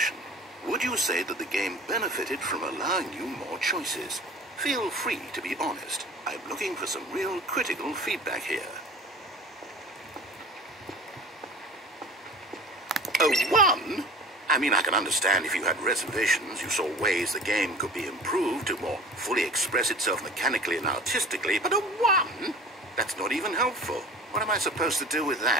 Would you say that the game benefited from allowing you more choices? Feel free to be honest. I'm looking for some real critical feedback here. A 1? I mean, I can understand if you had reservations, you saw ways the game could be improved to more fully express itself mechanically and artistically, but a 1? That's not even helpful. What am I supposed to do with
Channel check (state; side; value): normal; both; correlation 0.40